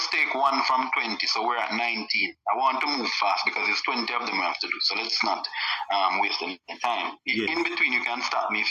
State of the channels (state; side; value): identical; both; correlation 1.00